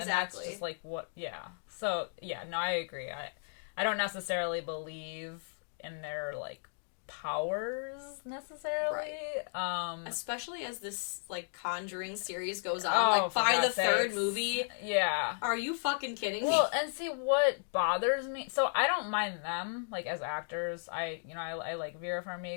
And that's just like what. So no, I agree. I don't necessarily believe in their, like, powers necessarily. Right. Especially as this, like, Conjuring series goes on. Like, by the third movie. Yeah. Are you fucking kidding me? Well, and see, what bothers me... So, I don't mind them, like, as actors. I like Vera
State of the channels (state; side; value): silent; right; digital silence